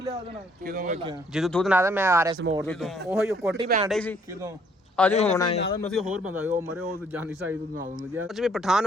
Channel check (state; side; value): normal; both; correlation 0.64